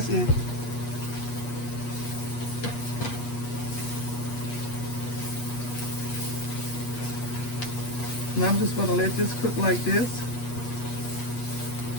it. Now I'm just going to let this cook like this.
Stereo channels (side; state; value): right; late; 8.4 ms